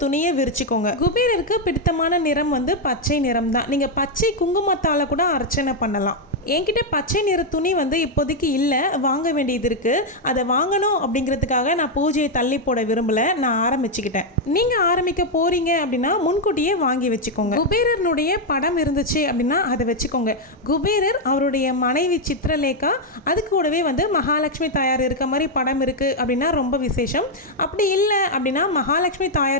துணியை விரிச்சுக்கோங்க. குபேரருக்கு பிடித்தமான நிறம் பச்சை நிறம் தான். நீங்கள் பச்சை குங்குமத்தால் கூட அர்ச்சனை பண்ணலாம். என்கிட்ட பச்சை நிற துணி இப்போதைக்கு இல்லை, வாங்க வேண்டியது இருக்குது. அதை வாங்கணும் அப்படிங்கிறதுக்காக நான் பூஜையை தள்ளி போட விரும்பலை, நான் ஆரம்பிச்சுக்கிட்டேன். நீங்கள் ஆரம்பிக்க போகிறீங்க அப்படின்னா முன்கூட்டியே வாங்கி வச்சுக்கோங்க. குபேரனுடைய படம் இருந்துச்சு அப்படின்னா அதை வச்சுக்கோங்க. குபேரர், அவருடைய மனைவி சித்திரலேகா, அது கூடவே மகாலட்சுமி தாயார் இருக்க மாதிரி படம் இருக்குது அப்படின்னா ரொம்ப விசேஷம். அப்படி இல்லை அப்படின்னா மகாலட்சுமி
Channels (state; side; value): normal; both; correlation 0.01